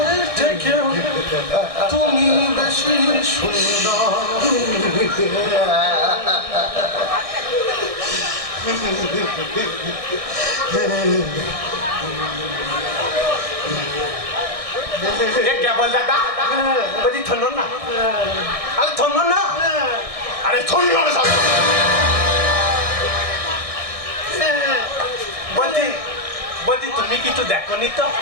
থেকেও তুমি বেশি সুন্দর। क्या बोल दादा? बड़ी थन्नो ना, अरे थन्नो ना, अरे थन्नो ना साला। বলছি তুমি কিছু দেখোনি তো?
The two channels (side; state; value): left; late; 1.6 ms